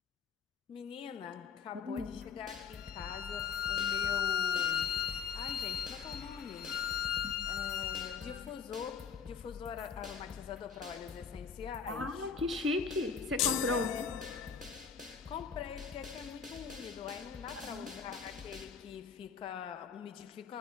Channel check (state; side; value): quieter; right; 6.3 dB